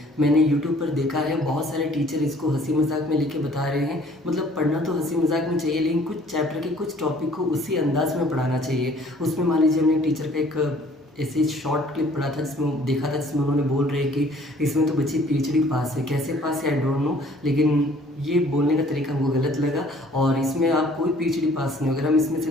मैंने यूट्यूब पर देखा है बहुत सारे टीचर इसको हंसी मजाक में लेके बता रहे हैं। मतलब पढ़ना तो हंसी मजाक में चाहिए, लेकिन कुछ चैप्टर के कुछ टॉपिक को उसी अंदाज में पढ़ाना चाहिए। उसमें मान लीजिए हमने टीचर का एक ऐसे शॉर्ट क्लिप पढ़ा था, जिसमें देखा था, जिसमें उन्होंने बोल रहे कि इसमें तो बच्ची पीएचडी पास है। कैसे पास है आई डोंट नो, लेकिन ये बोलने का तरीका हमको गलत लगा। और इसमें आप कोई पीएचडी पास नहीं हो। अगर हम इसमें से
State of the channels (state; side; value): normal; both; correlation 0.56